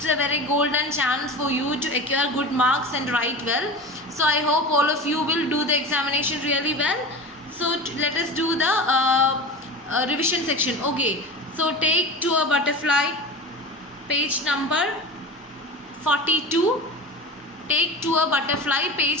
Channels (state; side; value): normal; both; correlation 0.31